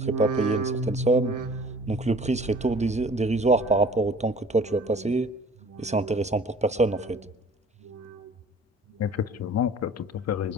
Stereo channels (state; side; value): normal; both; correlation 0.49